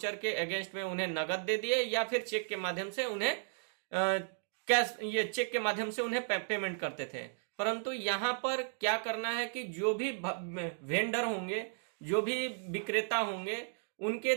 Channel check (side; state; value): left; silent; digital silence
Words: के अगेंस्ट में उन्हें नगद दे दिए या फिर चेक के माध्यम से उन्हें कैश, ये चेक के माध्यम से उन्हें पेमेंट करते थे। परंतु यहाँ पर क्या करना है कि जो भी वेंडर होंगे, जो भी विक्रेता होंगे, उनके